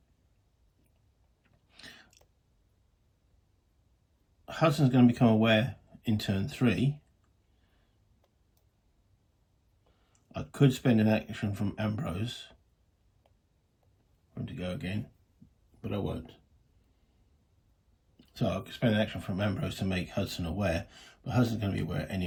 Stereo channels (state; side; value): identical; both; correlation 1.00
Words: Hudson's going to become aware in turn 3. I could spend an action from Ambrose for him to go again, but I won't. So I could spend an action from Ambrose to make Hudson aware, but Hudson's going to be aware